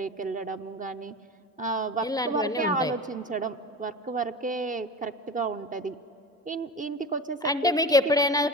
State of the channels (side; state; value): both; normal; correlation 0.30